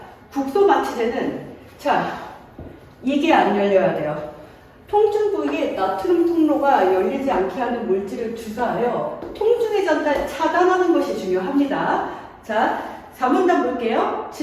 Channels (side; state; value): both; identical; correlation 1.00